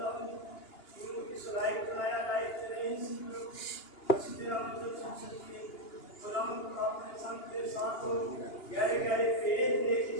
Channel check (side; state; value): right; late; 2.8 ms